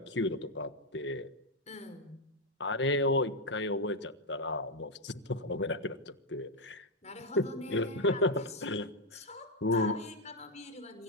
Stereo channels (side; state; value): both; normal; correlation 0.02